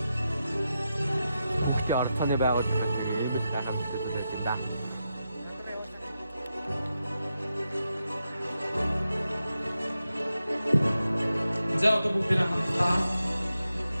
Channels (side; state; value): both; inverted; correlation -0.88